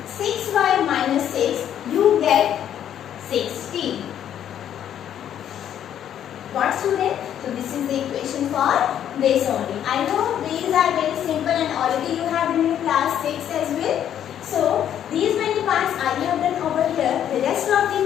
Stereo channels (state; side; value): quieter; right; 10.1 dB